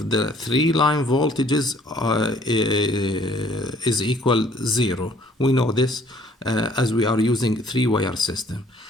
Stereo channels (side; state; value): both; normal; correlation 0.59